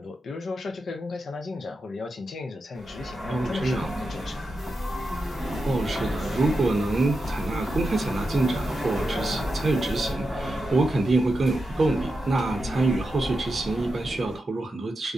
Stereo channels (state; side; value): normal; both; correlation 0.89